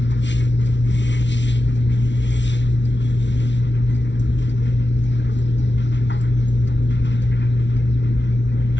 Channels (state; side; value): late; right; 0.52 ms